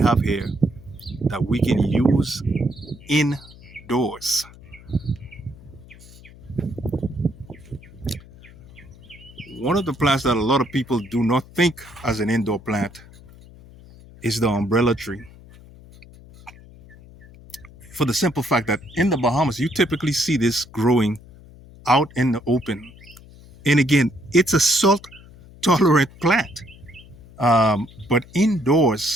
here that we can use indoors. One of the plants that a lot of people do not think as an indoor plant is the umbrella tree. For the simple fact that in the Bahamas, you typically see this growing out in the open. And again, it's a salt tolerant plant. But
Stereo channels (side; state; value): left; noise; hum, 21 dB below the sound